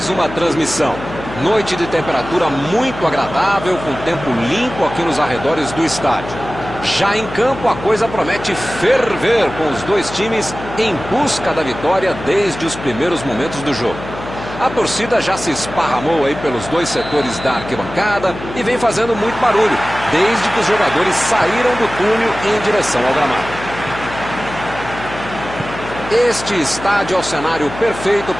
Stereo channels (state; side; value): noise; left; hum, 12 dB below the sound